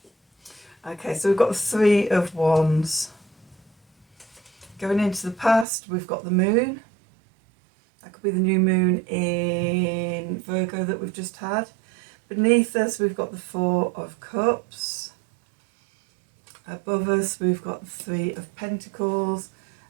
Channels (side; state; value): left; drops out; at 5.7 s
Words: Okay, so we've got the 3 of Wands. Going into the past, we've got the moon. That could be the new moon in Virgo that we've just had. Beneath us, we've got the 4 of Cups. Above us, we've got the 3 of Pentacles.